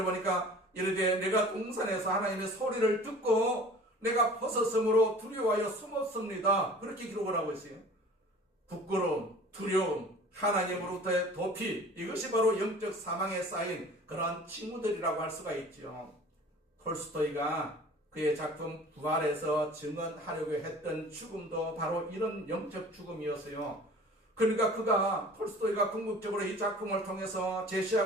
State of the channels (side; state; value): both; normal; correlation 0.45